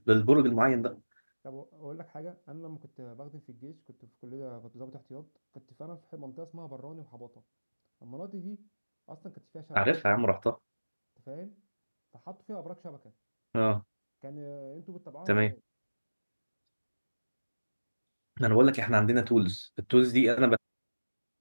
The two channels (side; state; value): both; inverted; correlation -1.00